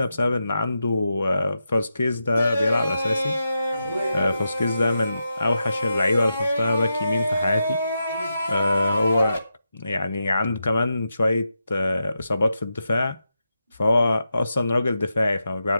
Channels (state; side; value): inverted; both; correlation -0.88